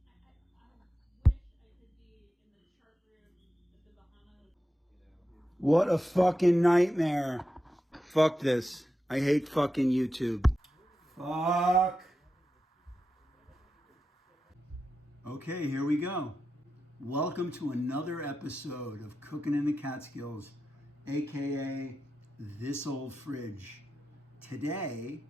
What a fucking nightmare. Fuck this. I hate fucking YouTube. Fuck. Okay, here we go. Welcome to another episode of Cooking in the Catskills, aka This Old Fridge. Today,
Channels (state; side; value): normal; both; correlation 0.89